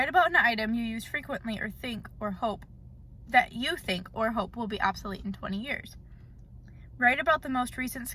about an item you use frequently or think or hope will be obsolete in 20 years. Write about the most recent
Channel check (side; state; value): both; identical; correlation 1.00